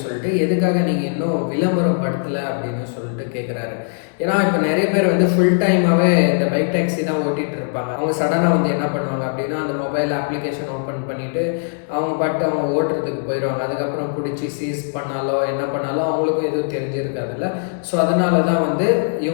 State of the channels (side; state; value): right; silent; digital silence